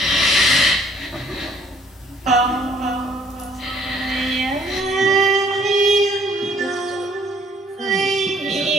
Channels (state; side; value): normal; both; correlation 0.61